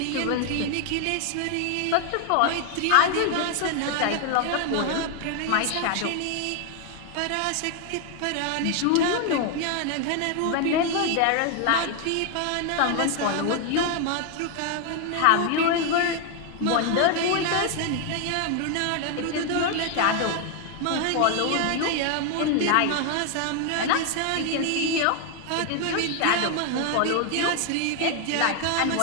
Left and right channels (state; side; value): different; both; correlation 0.01